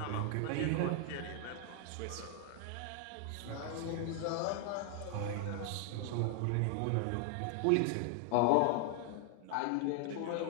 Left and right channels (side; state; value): both; different; correlation 0.00